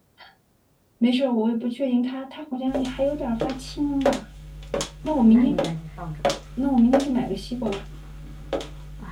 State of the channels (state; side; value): identical; both; correlation 1.00